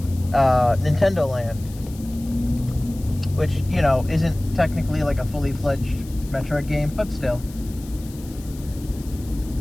Nintendo Land, which, you know, isn't technically like a fully fledged Metroid game, but still.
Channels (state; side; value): noise; left; hiss, 21 dB below the sound